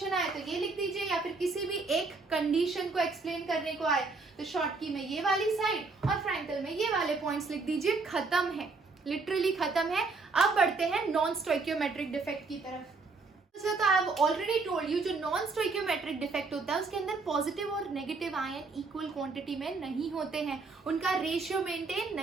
आए तो ये लिख दीजिए, या फिर किसी भी एक कंडीशन को एक्सप्लेन करने को आए तो शॉर्टकी में ये वाली साइड और फ्रैंकल में ये वाले पॉइंट्स लिख दीजिए। खत्म है, लिटरली खत्म है। अब बढ़ते हैं नॉन स्टोइकियोमेट्रिक डिफेक्ट की तरफ। तो I have already told you, जो नॉन स्टोइकियोमेट्रिक डिफेक्ट होता है उसके अंदर पॉजिटिव और नेगेटिव आयन इक्वल क्वांटिटी में नहीं होते हैं, उनका रेशियो मेंटेन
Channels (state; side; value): quieter; left; 4.0 dB